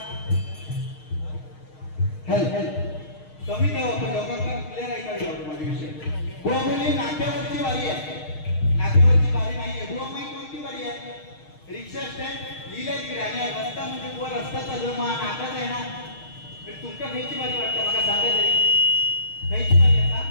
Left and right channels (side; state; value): right; late; 6.5 ms